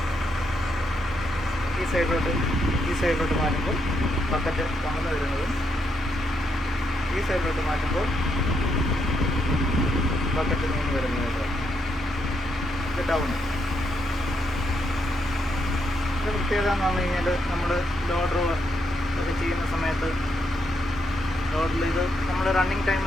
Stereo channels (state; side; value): normal; both; correlation 0.79